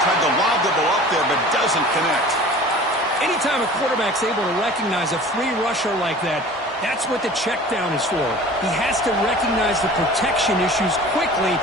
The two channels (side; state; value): both; normal; correlation 0.42